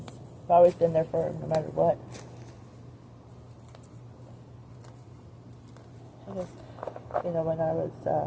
I've always been there for him, no matter what. I guess, you know, when I was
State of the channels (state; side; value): identical; both; correlation 1.00